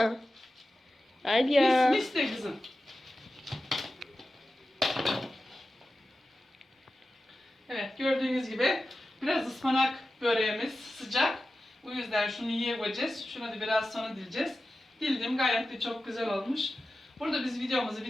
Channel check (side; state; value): both; normal; correlation 0.94